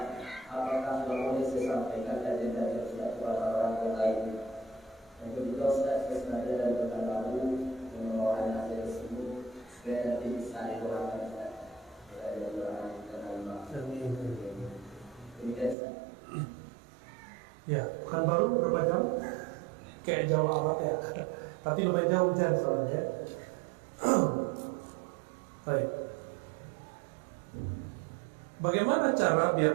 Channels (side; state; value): left; drops out; at 15.8 s